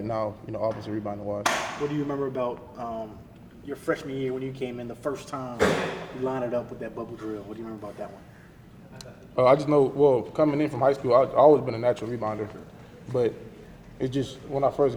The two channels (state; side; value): identical; both; correlation 1.00